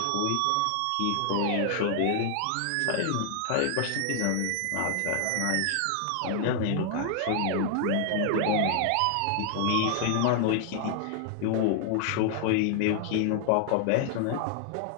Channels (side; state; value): both; different; correlation 0.00